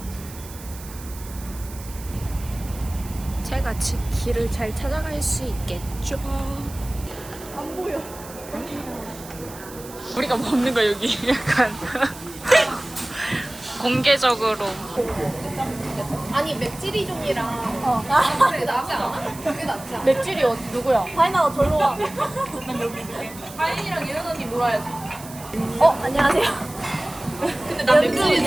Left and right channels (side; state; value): right; noise; hiss, 17 dB below the sound